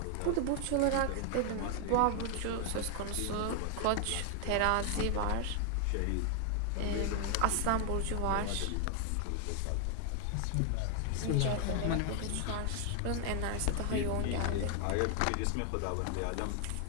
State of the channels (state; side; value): different; both; correlation 0.00